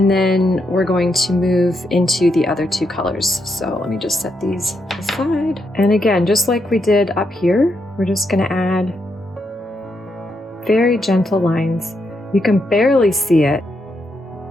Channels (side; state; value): both; normal; correlation 0.81